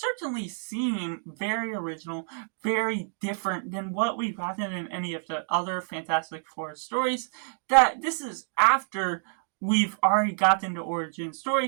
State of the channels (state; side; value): silent; left; 59 dB below the other